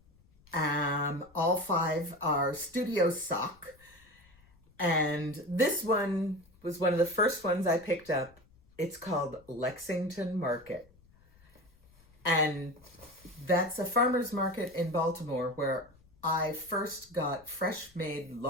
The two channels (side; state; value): left; noise; rumble, 29 dB below the sound